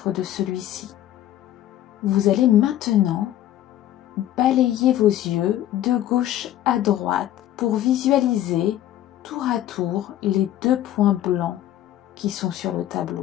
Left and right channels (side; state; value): right; quieter; 12.7 dB